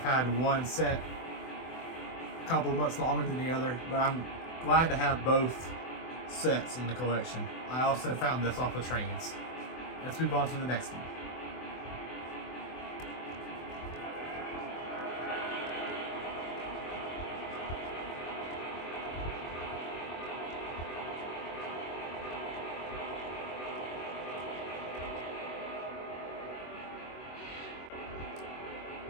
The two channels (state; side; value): late; right; 24 ms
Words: had one set a couple of months longer than the other, but I'm glad to have both sets in the collection. I also found this off of Trains. Let's move on to the next one.